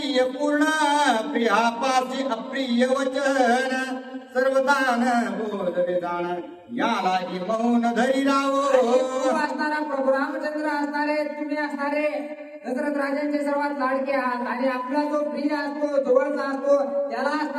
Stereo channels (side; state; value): both; identical; correlation 1.00